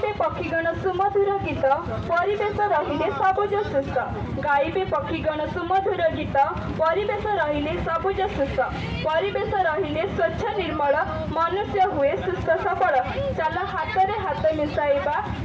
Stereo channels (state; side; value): identical; both; correlation 1.00